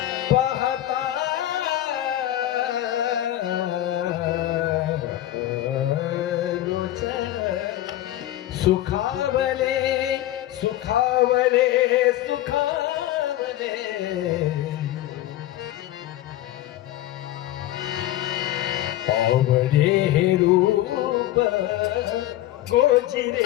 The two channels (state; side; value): quieter; right; 14.3 dB